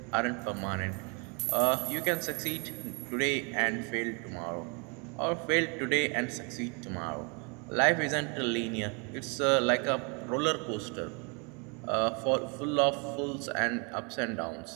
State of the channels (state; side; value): quieter; left; 34.3 dB